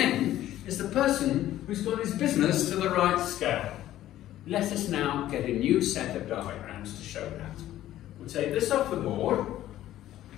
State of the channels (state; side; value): quieter; right; 13.5 dB